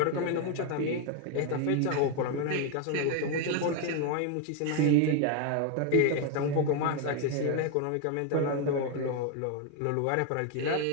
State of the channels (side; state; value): both; different; correlation 0.01